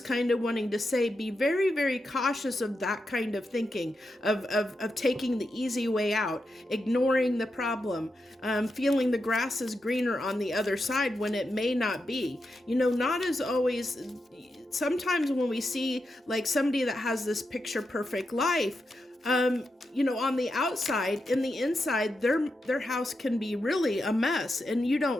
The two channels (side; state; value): both; normal; correlation 0.87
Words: of wanting to say, be very, very cautious of that kind of thinking, of taking the easy way out, ignoring the problem, feeling the grass is greener on the other side when it may not be. Not as always. Sometimes when we see like somebody that has this picture perfect life, on the outside, in the inside, their house can be really a mess, and you